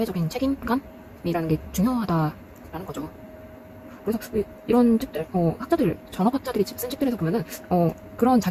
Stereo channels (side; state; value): both; identical; correlation 1.00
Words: 책임감이라는 게 중요하다라는 거죠. 그래서 이런 책들, 학자들, 전업학자들이 쓴 책들에서 보면은 그런